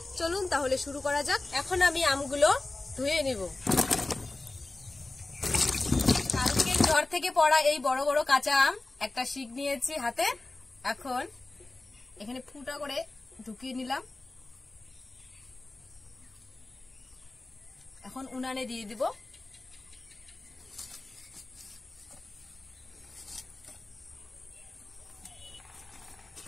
চলুন তাহলে শুরু করা যাক। এখন আমি আমগুলো ধুয়ে নিব। কালকে ঘর থেকে পড়া এই বড় বড় কাঁচা আম একটা শিক নিয়েছি হাতে। এখন এখানে ফুটা করে ঢুকিয়ে নিলাম। এখন উনানে দিয়ে দিব।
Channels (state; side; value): quieter; right; 3.1 dB